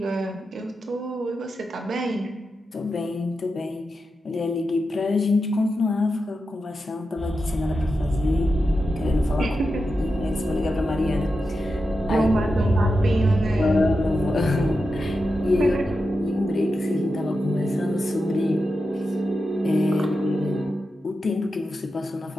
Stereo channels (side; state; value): both; normal; correlation 0.89